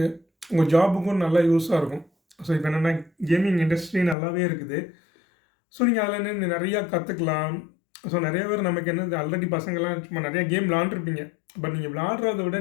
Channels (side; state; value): right; drops out; at 4.2 s